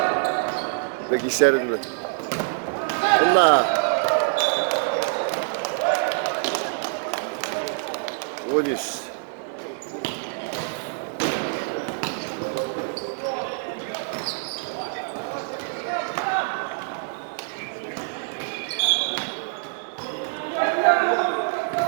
Peki işlerinde. Allah. Onis.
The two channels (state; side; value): silent; left; digital silence